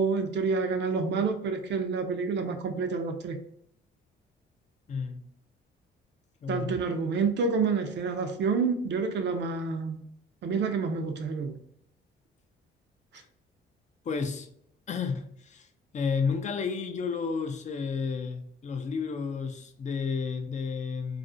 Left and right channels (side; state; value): both; normal; correlation 0.37